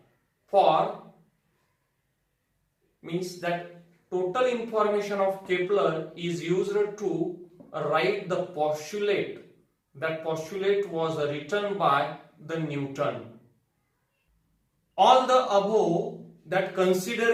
for means that total information of Kepler is used to write the postulate. That postulate was written by the Newton. All the above that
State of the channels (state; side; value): identical; both; correlation 1.00